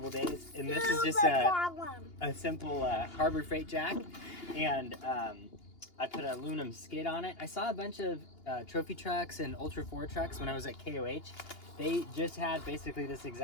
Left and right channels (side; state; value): right; late; 2.8 ms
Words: days, and this is just a simple Harbor Freight jack, and I put an aluminum skid on it. I saw a bunch of trophy trucks and Ultra 4 trucks when I was at KOH. They just had basically this